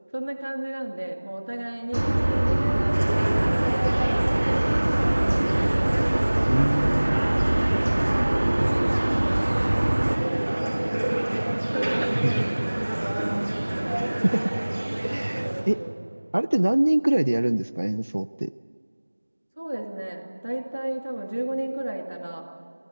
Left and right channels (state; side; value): inverted; both; correlation -1.00